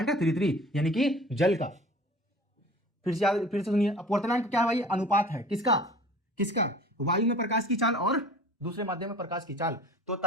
यानी कि जल का। फिर से सुनिए, अपवर्तनांक क्या है भाई, अनुपात है किसका, वायु में प्रकाश की चाल और दूसरे माध्यम में प्रकाश की चाल। तो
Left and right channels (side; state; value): both; normal; correlation 0.43